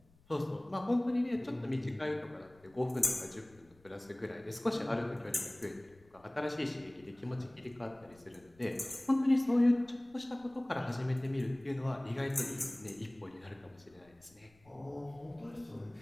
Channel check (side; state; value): left; noise; rumble, 28 dB below the sound